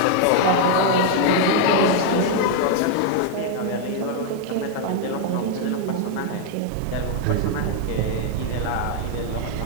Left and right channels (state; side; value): different; both; correlation 0.00